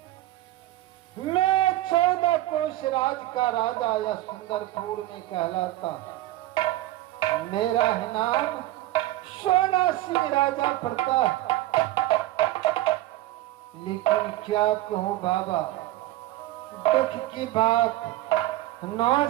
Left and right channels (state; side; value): quieter; left; 16.0 dB